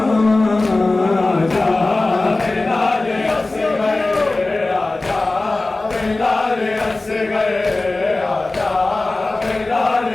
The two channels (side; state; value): right; quieter; 3.1 dB